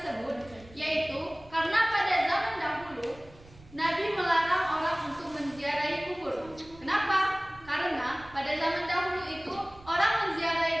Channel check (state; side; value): noise; right; rumble, 22 dB below the sound